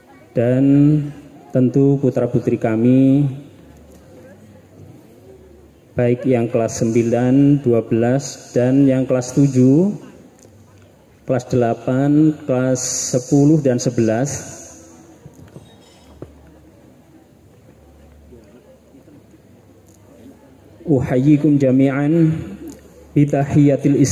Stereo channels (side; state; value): both; identical; correlation 1.00